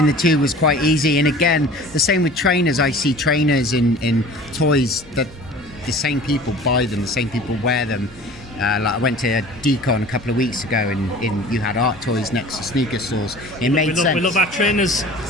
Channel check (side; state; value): both; normal; correlation 0.43